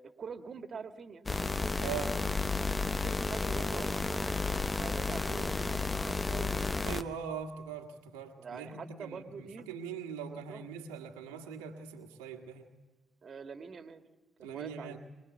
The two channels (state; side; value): normal; both; correlation 0.83